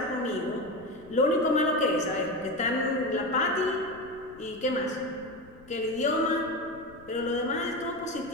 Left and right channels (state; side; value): noise; left; rumble, 23 dB below the sound